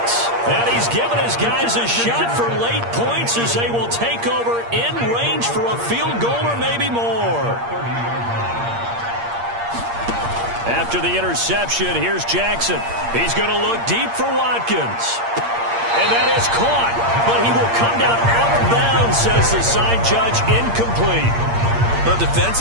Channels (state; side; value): late; left; 8.6 ms